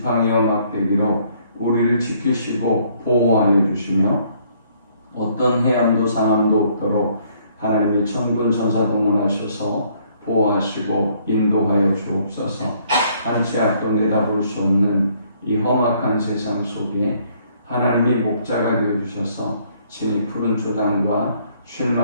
막대기로 우리를 지키시고 보호하여 주시며 어떤 해함도 상함도 없도록 하나님의 천군 천사 동원하셔서 보호하시고 인도하여 주옵소서. 한치 앞도 내다볼 수 없는 이 험악한 세상 속에 하나님이 목자가 되어주셔서 친히 푸른 초당과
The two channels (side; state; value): both; inverted; correlation -0.65